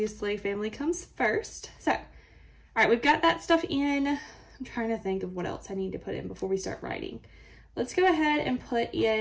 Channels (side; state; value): both; identical; correlation 1.00